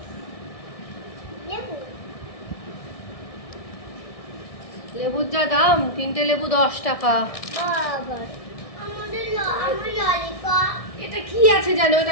লেবুর যা দাম, 3টে লেবু 10 টাকা। এটা কি আছে জানো,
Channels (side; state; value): right; late; 1.6 ms